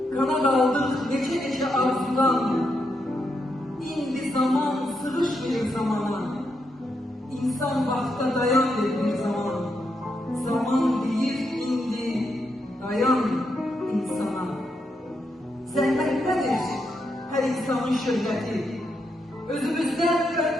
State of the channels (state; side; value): normal; both; correlation 0.82